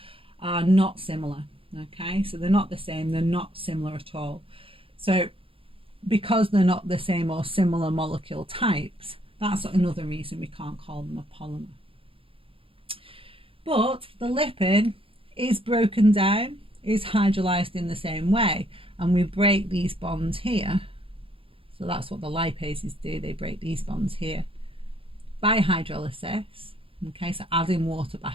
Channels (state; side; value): late; left; 0.27 ms